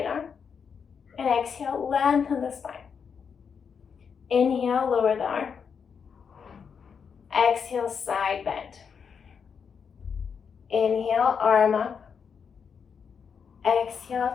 arm. And exhale, lengthen the spine. Inhale, lower the arm. Exhale, side bend. Inhale, arm up.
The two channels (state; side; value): quieter; right; 6.5 dB